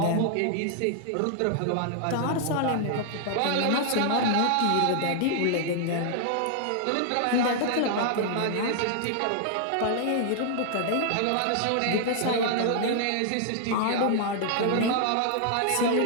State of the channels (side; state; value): both; different; correlation -0.01